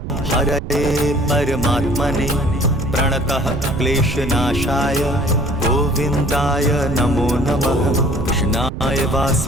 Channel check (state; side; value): noise; right; rumble, 7 dB below the sound